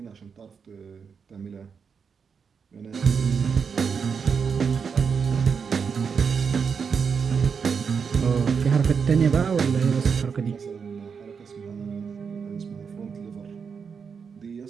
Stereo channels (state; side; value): quieter; left; 6.1 dB